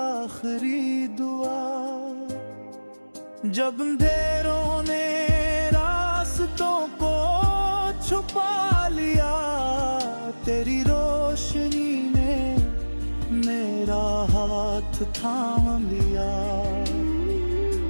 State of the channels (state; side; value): inverted; both; correlation -1.00